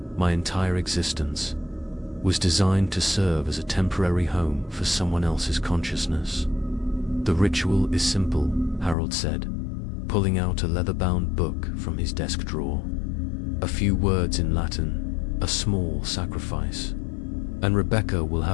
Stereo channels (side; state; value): right; drops out; at 9.0 s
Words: My entire existence was designed to serve as a temporary home for someone else's consciousness. "The ritual is simple," Harold said, pulling out a leather-bound book from his desk drawer. "A few words in Latin, a small sacrifice, and Rebecca will